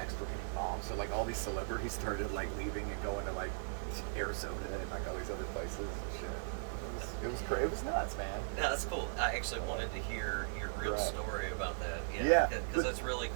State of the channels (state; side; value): silent; left; digital silence